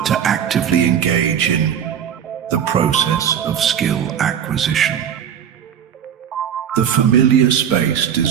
to actively engage in the process of skill acquisition. The familiar space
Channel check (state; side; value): quieter; left; 8.7 dB